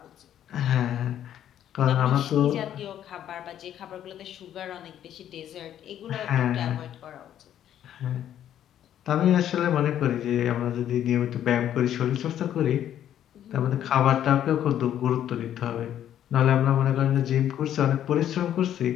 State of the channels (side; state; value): right; quieter; 10.8 dB